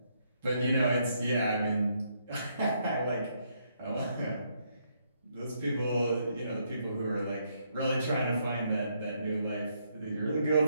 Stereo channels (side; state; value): both; inverted; correlation -0.75